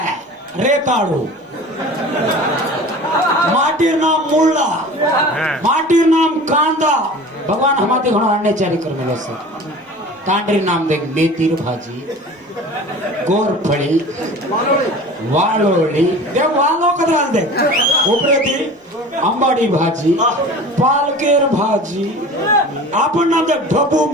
रे काढू माटीर नाम मुळा माटीर नाम कांदा भगवान हमारे घणो आणणे चारी करने सर तांडरी नाम देख मेथीर भाजी गोरफळी वाळोळी ते वालो कदा दे उपरेती अंबाडी भाजी पालकेर भाजी आपण नाम दे ढबू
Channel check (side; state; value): both; normal; correlation 0.39